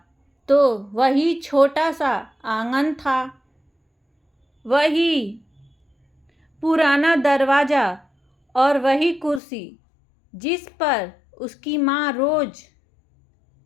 तो वही छोटा सा आंगन था, वही पुराना दरवाज़ा और वही कुर्सी जिस पर उसकी माँ रोज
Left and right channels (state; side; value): drops out; right; at 9.4 s